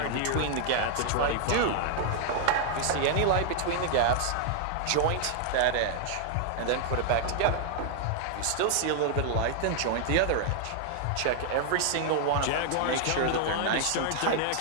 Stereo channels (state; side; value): different; both; correlation 0.00